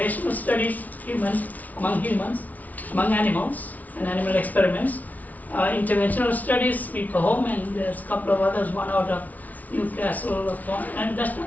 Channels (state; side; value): late; right; 0.074 ms